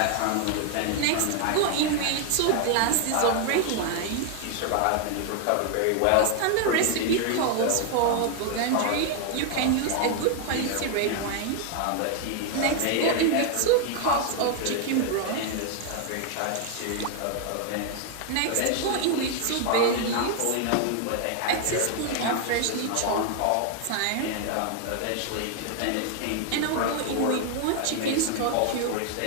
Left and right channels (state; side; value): different; both; correlation 0.00